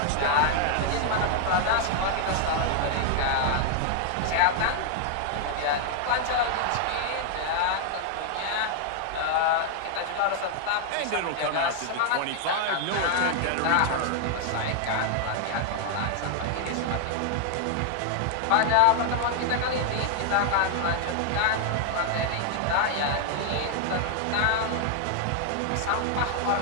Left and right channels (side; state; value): both; different; correlation 0.00